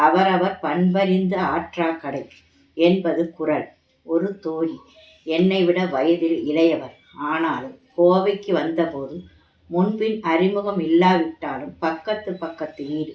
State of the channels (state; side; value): identical; both; correlation 1.00